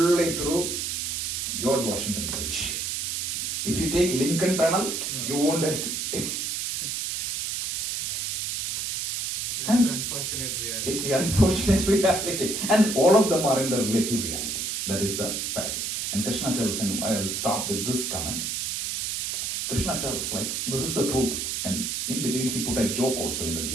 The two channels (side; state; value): right; noise; hiss, 2 dB below the sound